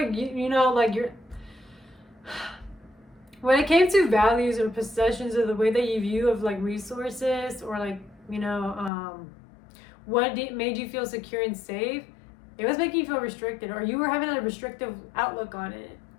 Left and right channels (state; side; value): drops out; right; at 8.9 s